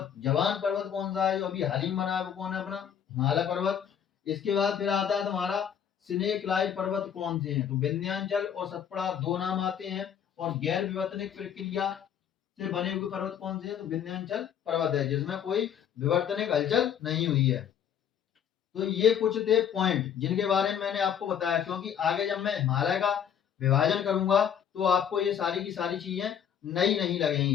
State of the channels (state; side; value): quieter; right; 8.7 dB